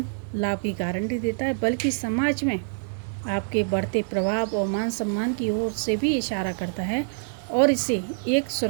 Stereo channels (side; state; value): left; silent; digital silence